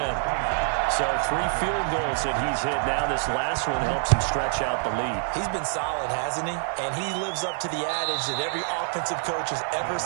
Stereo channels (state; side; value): silent; left; 61 dB below the other